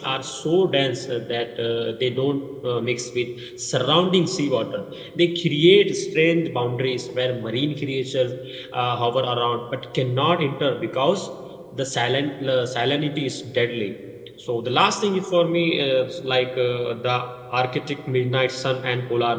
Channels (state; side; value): identical; both; correlation 1.00